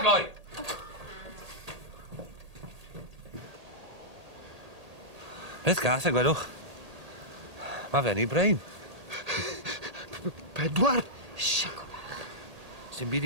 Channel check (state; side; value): late; left; 1.8 ms